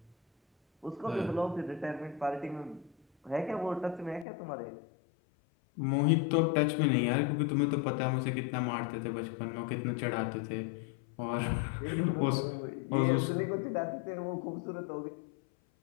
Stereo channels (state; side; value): drops out; right; at 4.2 s